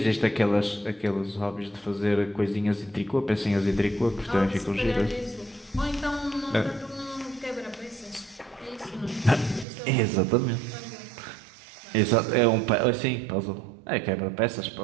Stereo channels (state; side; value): drops out; left; at 9.7 s